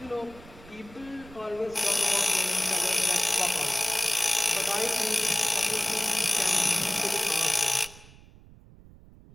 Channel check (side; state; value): right; noise; rumble, 21 dB below the sound